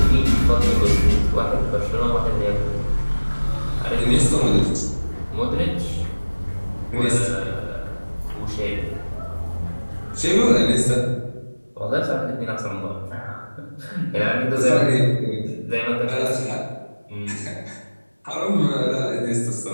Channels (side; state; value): both; inverted; correlation -1.00